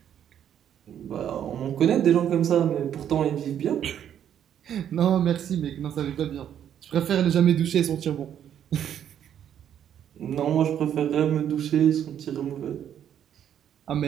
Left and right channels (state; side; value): quieter; left; 9.7 dB